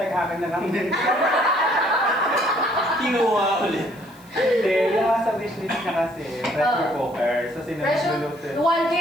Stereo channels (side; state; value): left; noise; hiss, 27 dB below the sound